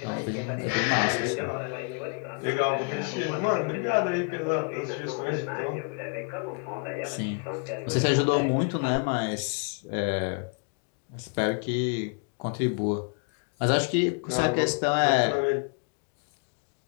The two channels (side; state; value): right; quieter; 36.6 dB